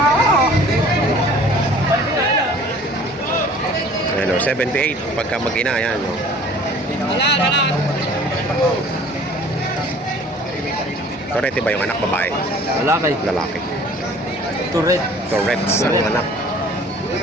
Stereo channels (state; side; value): normal; both; correlation 0.50